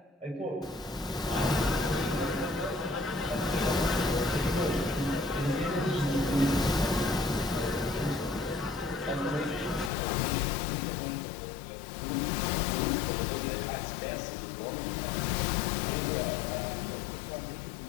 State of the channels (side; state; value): right; drops out; at 9.9 s